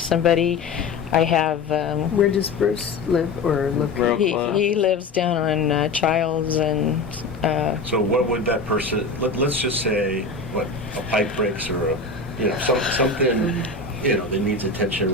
I have. Where does Bruce live or look? Real He close. lives down on Childs and. So what would that person, let's just say, a pipe breaks or something, that needs attention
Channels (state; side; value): quieter; right; 3.9 dB